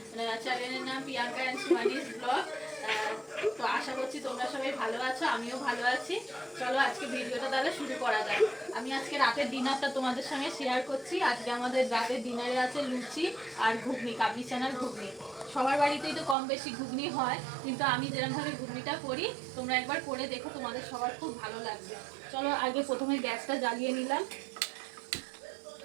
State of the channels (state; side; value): drops out; left; at 16.4 s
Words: চ্যানেলের নাম প্রিয়াঙ্কা এন্ড সুহানিস ব্লগ। তো আশা করছি তোমরা সবাই ভালো আছো, আমিও ভালো আছি। চলো আজকে ভিডিওটা তাহলে শুরু করা যাক। আমি আজকে রাতের ডিনারটা তোমাদের সঙ্গে শেয়ার করছি। আজকে আমাদের রাতের ডিনারে আছে লুচি আর ঘুগনি, কাবলি চানার ঘুগনি। সবার বাড়িতেই তো কম বেশি ঘুগনি হয়, কিন্তু আমি যেরকমভাবে ঘুগনিটা করি তোমরা একবার করে দেখো, তোমাদের সবার খুব ভালো লাগবে। চলো আগে প্রথমে গ্যাসটা জ্বালিয়ে নিলাম।